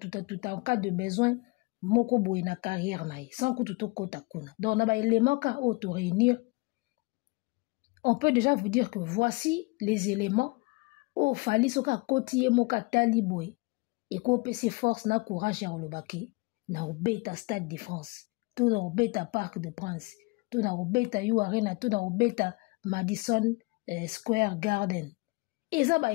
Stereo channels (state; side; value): quieter; right; 26.3 dB